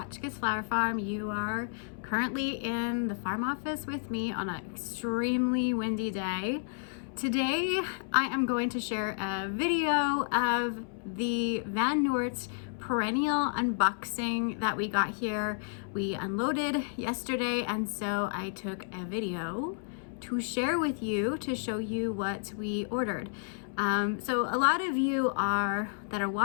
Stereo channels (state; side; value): silent; right; 57 dB below the other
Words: Flower Farm. You are currently in the farm office with me on an extremely windy day. Today, I am going to share a video of the Van Noort perennial unboxing that we got here. We unloaded yesterday, and so I took a video to share with you to show you what we ordered. So a lot of you that are